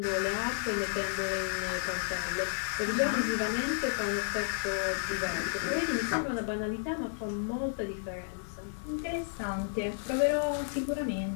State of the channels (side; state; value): right; silent; digital silence